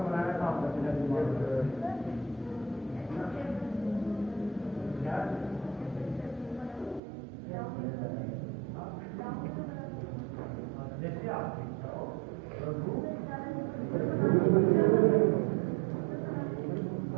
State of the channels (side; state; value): left; drops out; at 7.0 s